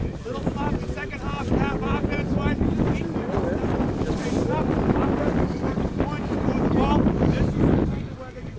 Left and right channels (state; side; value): identical; both; correlation 1.00